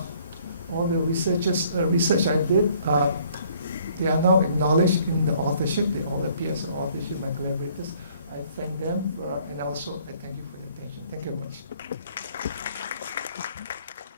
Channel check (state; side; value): inverted; both; correlation -0.60